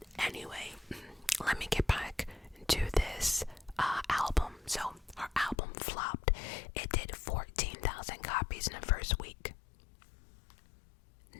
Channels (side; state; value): right; drops out; at 5.6 s